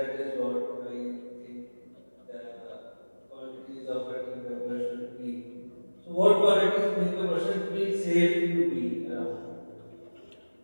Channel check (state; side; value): inverted; both; correlation -1.00